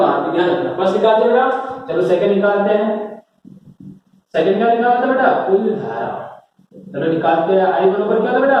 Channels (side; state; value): both; identical; correlation 1.00